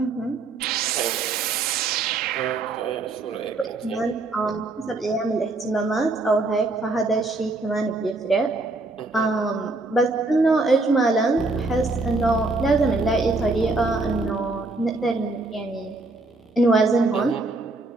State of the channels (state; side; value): quieter; left; 3.3 dB